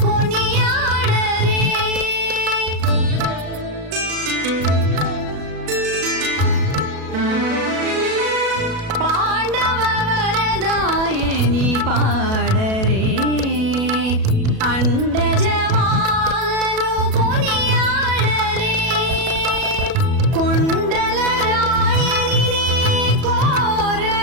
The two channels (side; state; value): left; late; 37 ms